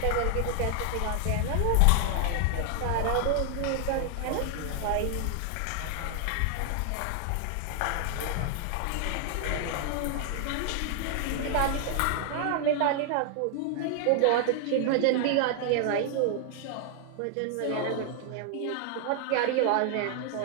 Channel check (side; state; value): both; different; correlation 0.00